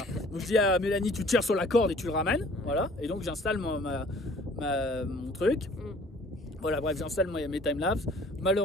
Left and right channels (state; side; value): normal; both; correlation 0.53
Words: Donc je dis à Mélanie, tu tires sur la corde et tu le ramènes. Voilà. Et donc j'installe mon truc. Voilà, bref, j'installe mes timelapses.